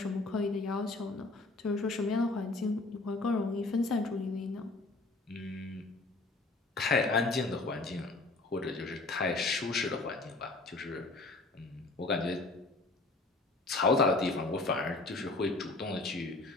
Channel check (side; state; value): right; quieter; 3.2 dB